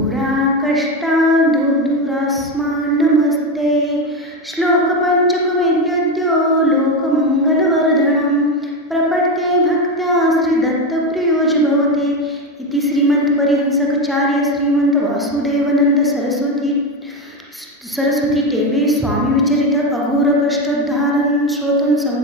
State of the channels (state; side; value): normal; both; correlation 0.14